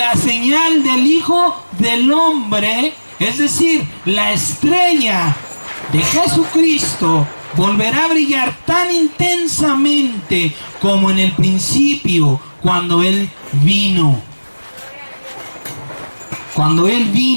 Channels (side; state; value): both; inverted; correlation -1.00